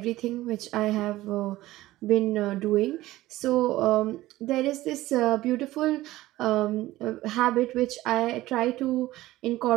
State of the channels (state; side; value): quieter; left; 16.7 dB